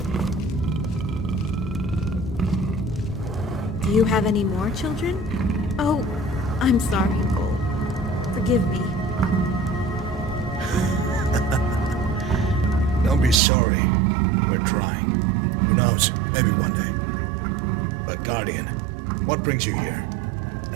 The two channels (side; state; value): left; drops out; at 13.4 s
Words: Do you have any more children? Oh, I'm sorry, Cole. Forgive me. Don't be sorry. We're trying. Who knows? Maybe one day. But Guardian, what brings you here?